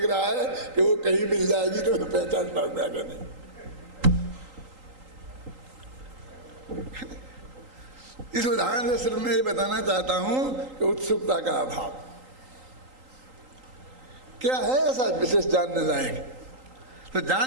रहा है कि वो कहीं मिल जाएगी तो मैं पहचान पाऊंगा कि नहीं। इस उदाहरण से सिर्फ मैं ये बताना चाहता हूं कि उत्सुकता का अभाव क्या है ऐसा विशेष जानने लायक। तो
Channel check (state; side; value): late; left; 3.8 ms